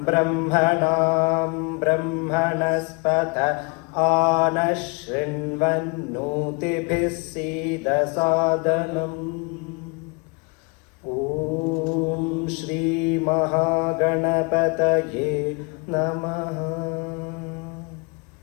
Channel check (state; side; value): quieter; right; 31.8 dB